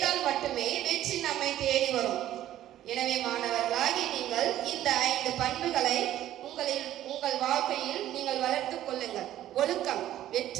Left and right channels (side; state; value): left; quieter; 12.9 dB